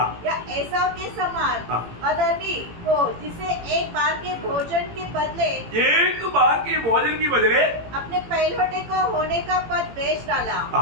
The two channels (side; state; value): left; late; 17 ms